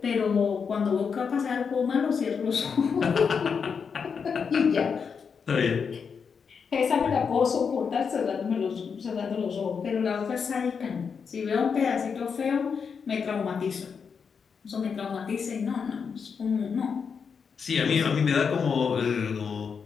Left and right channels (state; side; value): quieter; right; 6.1 dB